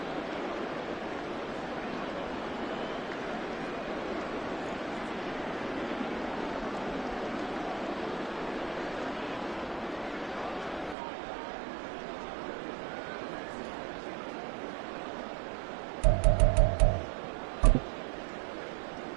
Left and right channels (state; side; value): drops out; left; at 11.0 s